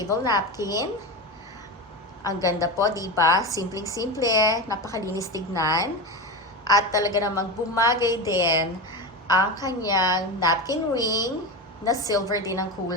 napkin. Ang ganda po, di ba? Simpleng-simple, napakalinis tignan. At talaga namang bumagay din ang kanyang napkin ring na silver din ang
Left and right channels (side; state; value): both; normal; correlation 0.20